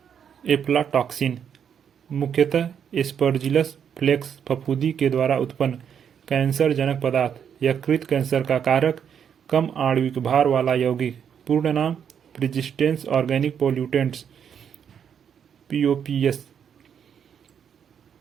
एफ्लाटॉक्सिन, मुख्यतः एस्परजिलस फ्लेक्स फफूंदी के द्वारा उत्पन्न कैंसर जनक पदार्थ। यकृत कैंसर का कारक, कम आणविक भार वाला यौगिक। पूर्ण नाम, प्रिजिस्टेंस ऑर्गेनिक पोल्यूटेंट्स, POPS।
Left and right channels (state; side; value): quieter; left; 8.0 dB